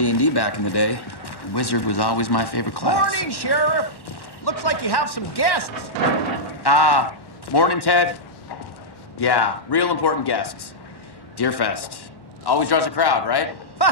back in the day. Wizard was always my favorite class. Morning, Sheriff. Looks like you have some guests. Ah, morning, Ted. Yeah, real important guests. Deerfest. Always draws a crowd, right?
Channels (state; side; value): late; right; 1.1 ms